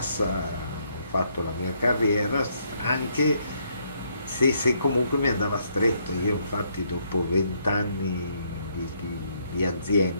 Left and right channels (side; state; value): both; inverted; correlation -0.72